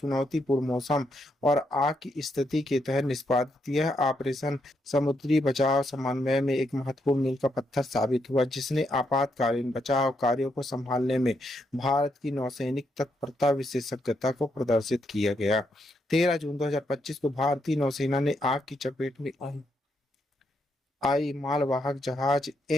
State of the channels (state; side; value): normal; both; correlation 0.79